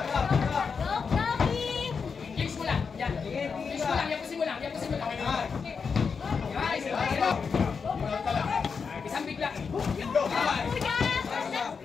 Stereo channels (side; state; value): right; quieter; 5.6 dB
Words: Gabby! Kicks mo lang! Yan! Kicks mo lang! Yapusin mo lang! Yapusin mo lang! Guys! Isang bigla! Kuya!